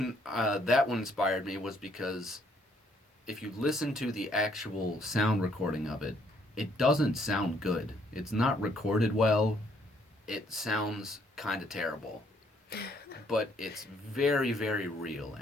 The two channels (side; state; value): both; normal; correlation 0.67